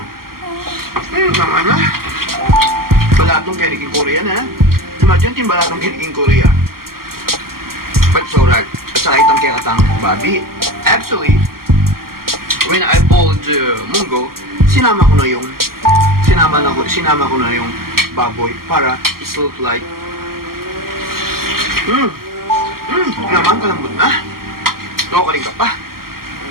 Naman na. Balatong kiniking Korea na. Imagine, timbalatong kiniking Korea. But it's alright. at saka itong kay Katang Bobby. Actually, when I pulled Munggo, sinama ko na yung baboy para it look like naman kalambot na. Nakukaling ka pa.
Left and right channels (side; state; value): left; late; 0.92 ms